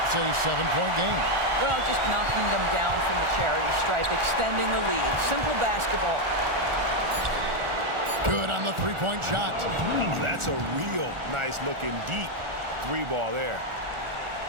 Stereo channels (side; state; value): left; late; 1.4 ms